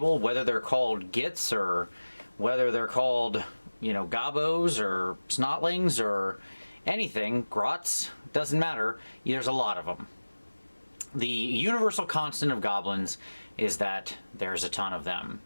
whether they're called gits or whether they're called, you know, gobos or snotlings or anything, grots, doesn't matter, there's a lot of them. The universal constant of goblins is that there's a ton of them.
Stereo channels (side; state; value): both; inverted; correlation -1.00